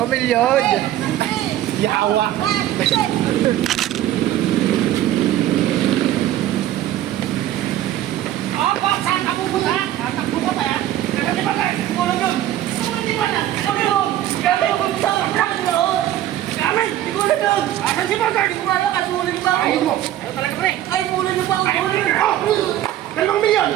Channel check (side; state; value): left; quieter; 12.9 dB